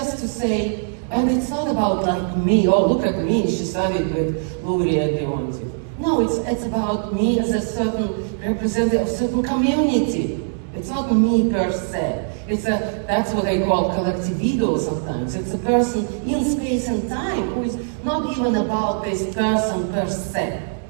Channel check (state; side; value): silent; left; digital silence